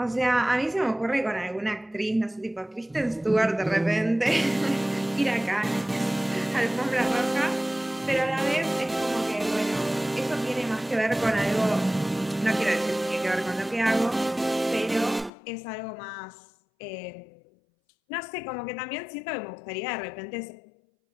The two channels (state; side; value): drops out; right; at 15.3 s